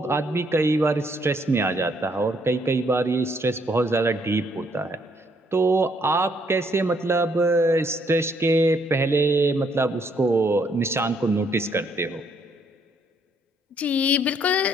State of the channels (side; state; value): both; normal; correlation 0.69